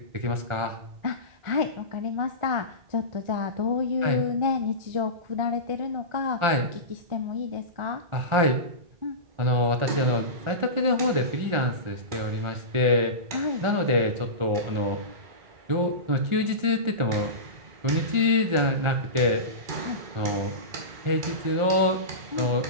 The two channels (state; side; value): late; left; 1.4 ms